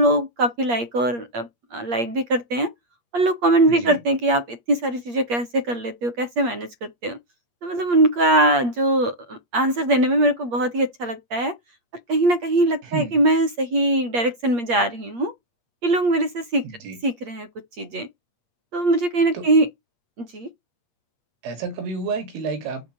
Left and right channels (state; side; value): late; left; 8.5 ms